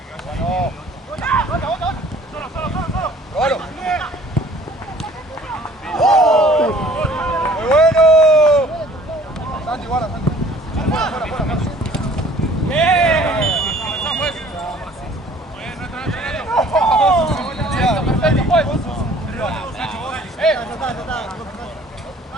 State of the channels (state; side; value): normal; both; correlation 0.53